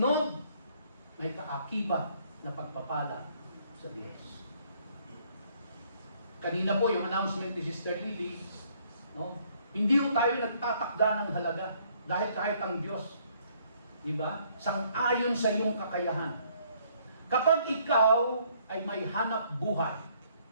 may kaakibat na pagpapala sa Diyos. Kanina po yung announcement ni Sister Lily, no? Hindi po tayo nagtatakda ng halaga dahil kahit ang Diyos, di ba? Sang-ayon sa iyong kakayahan. Kapag ikaw ay may hanap buhay,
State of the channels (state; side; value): inverted; both; correlation -0.65